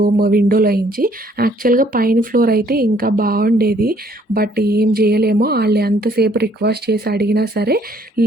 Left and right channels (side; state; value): both; normal; correlation 0.63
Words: విండోలోంచి. యాక్చువల్‌గా పైన ఫ్లోర్ అయితే ఇంకా బావుండేది. బట్ ఏం జేయలేము. ఆళ్ళు ఎంతసేపు రిక్వెస్ట్ చేసి అడిగినా సరే